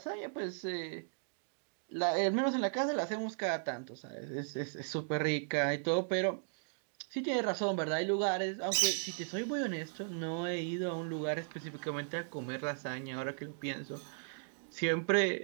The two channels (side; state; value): left; silent; digital silence